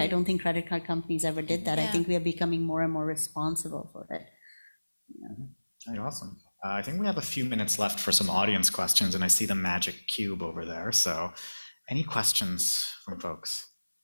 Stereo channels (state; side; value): inverted; both; correlation -1.00